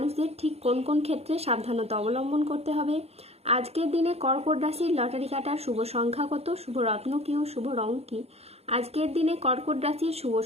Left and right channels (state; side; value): late; left; 0.30 ms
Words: ঠিক কোন কোন ক্ষেত্রে সাবধানতা অবলম্বন করতে হবে, আজকের দিনে কর্কট রাশির লটারি কাটার শুভ সংখ্যা কত, শুভ রত্ন কী ও শুভ রং কী, আজকের দিনে কর্কট রাশির শুভ